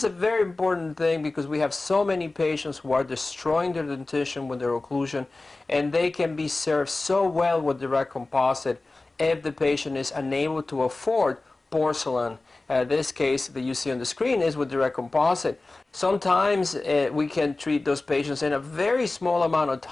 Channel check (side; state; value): right; quieter; 3.2 dB